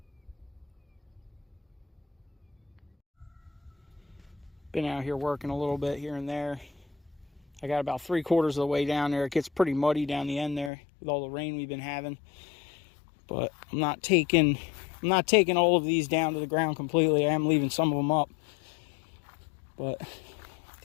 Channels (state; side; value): drops out; right; at 10.7 s